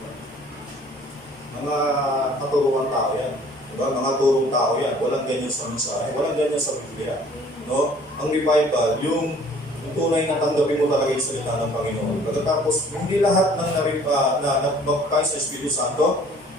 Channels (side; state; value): both; normal; correlation 0.54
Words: Mga katuruan tao yan. Diba? Mga turong tao yan. Walang ganyan sa mensahe, walang ganyan sa Biblia. No? Ang revival, yung tunay na tanggapin mo talaga yung salita ng Panginoon. Pagkatapos, hindi lahat ng nabaptize sa Espiritu Santo